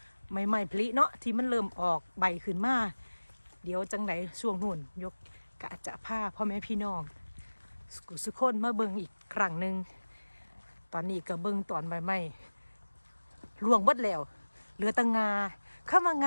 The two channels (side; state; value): both; inverted; correlation -1.00